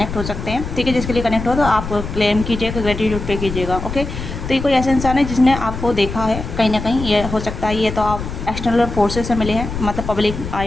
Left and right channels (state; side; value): noise; left; rumble, 7 dB below the sound